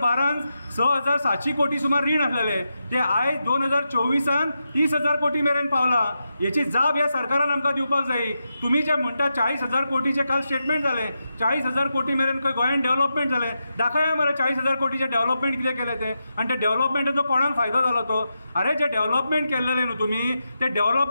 6,700 कोटी सुमार रीण आसलेले ते आयज 2024 30,000 कोटी मेरेन पावला। याची जाप ह्या सरकारान आमकां दिवपाक जाय। तुमी जे म्हणटा 40,000 कोटीचे काल स्टेटमेंट जाले, 40,000 कोटी मेरेन खंय गोंयान डेव्हलपमेंट जाले, दाखया मरे 40,000 कोटीचे डेव्हलपमेंट कितें केले ते, आनी ते डेव्हलपमेंटाचो कोणाक फायदो जालो तो। अरे जे डेव्हलपमेंट केल्लेले न्हू तुमी ते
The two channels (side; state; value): both; inverted; correlation -0.88